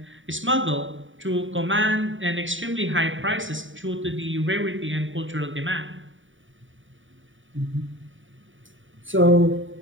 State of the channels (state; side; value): late; left; 0.56 ms